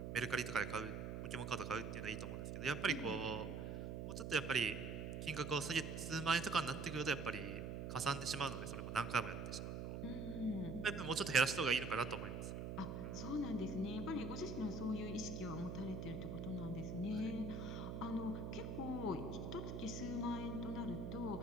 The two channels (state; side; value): noise; right; hum, 4 dB below the sound